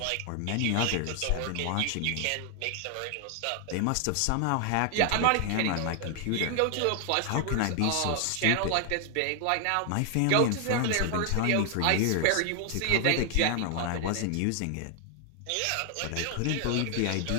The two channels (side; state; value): both; different; correlation 0.00